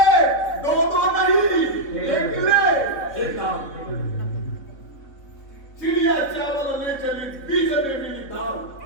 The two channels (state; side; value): late; right; 3.5 ms